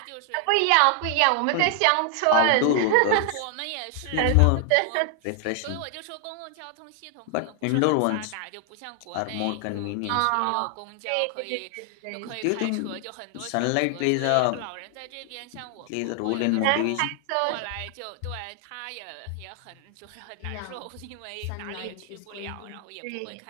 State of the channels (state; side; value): different; both; correlation 0.00